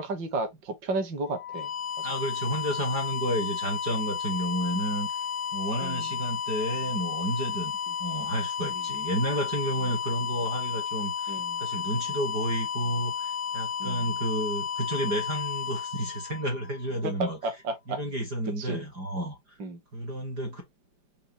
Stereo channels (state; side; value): late; left; 5.0 ms